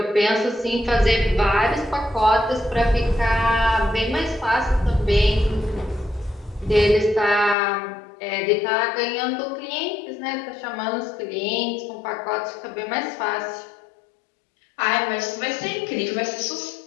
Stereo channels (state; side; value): drops out; right; at 7.6 s